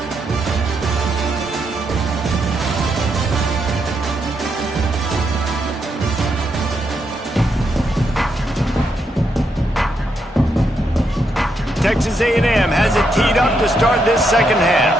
Texas A&M has it teed up to start this second half.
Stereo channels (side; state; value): both; normal; correlation 0.80